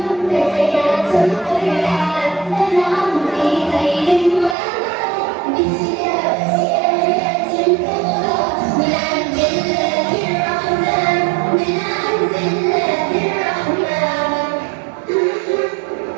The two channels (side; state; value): left; drops out; at 4.5 s